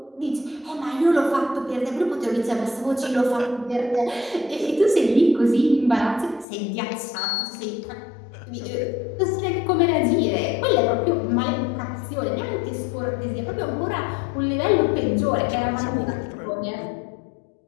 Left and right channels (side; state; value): right; drops out; at 6.5 s